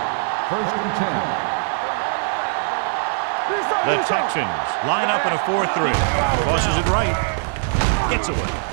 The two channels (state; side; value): silent; left; 65 dB below the other